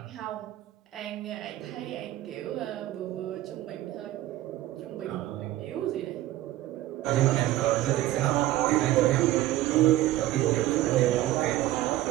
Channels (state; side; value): quieter; left; 15.0 dB